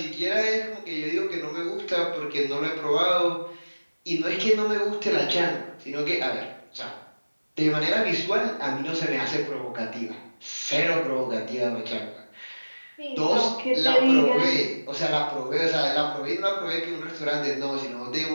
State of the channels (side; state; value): both; inverted; correlation -1.00